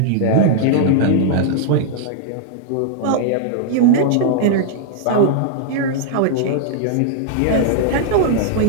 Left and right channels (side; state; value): both; different; correlation -0.01